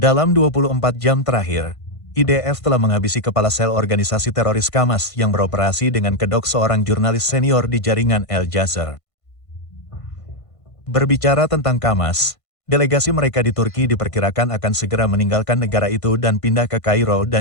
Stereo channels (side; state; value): right; late; 1.5 ms